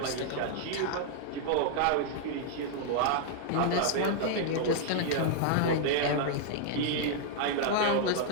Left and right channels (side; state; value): both; different; correlation -0.01